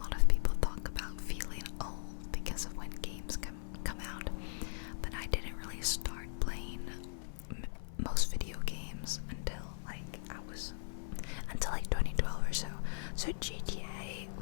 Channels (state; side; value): silent; right; 52 dB below the other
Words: of people talk about feeling old because of when games come out, but I didn't really start playing most video games until 2012 or so. So GTA